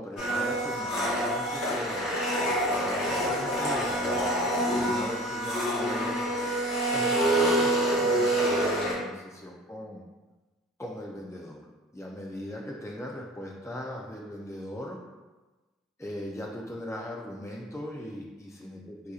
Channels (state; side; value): normal; both; correlation 0.41